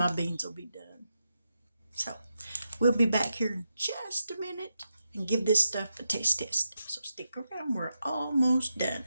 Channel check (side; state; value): both; inverted; correlation -0.86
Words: beans will be done. So we'll be back here in just a minute and give this stuff a taste test. So stick around, we're almost done.